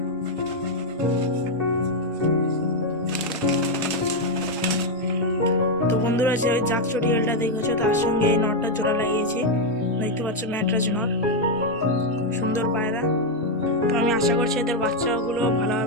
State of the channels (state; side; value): normal; both; correlation 0.01